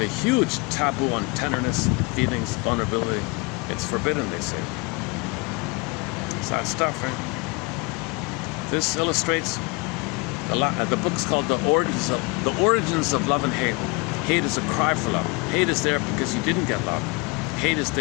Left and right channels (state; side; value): quieter; right; 26.9 dB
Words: a huge taboo on tenderness, feelings, vulnerability. It's forbidden, they say. It's that stuff, right? This illustrates the book's called The Origins of Love and Hate. Hate is a cry for love. Hate is there because you didn't get love. Hate is